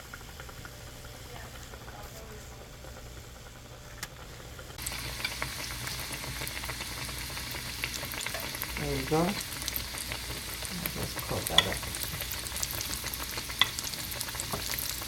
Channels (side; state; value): both; identical; correlation 1.00